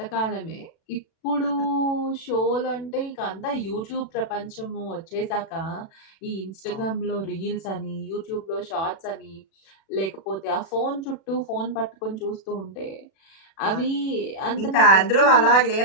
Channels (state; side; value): late; right; 36 ms